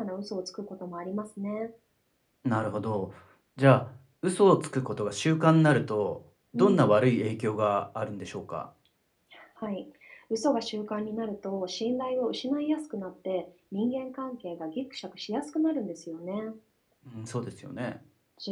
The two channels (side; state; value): both; identical; correlation 1.00